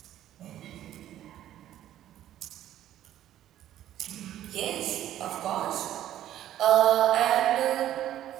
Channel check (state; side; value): quieter; left; 12.3 dB